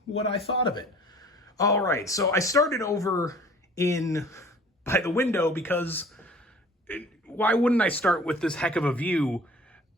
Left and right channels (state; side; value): normal; both; correlation 0.49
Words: what I thought of it. All right, so I started over by the window because why wouldn't I start with this heck of a view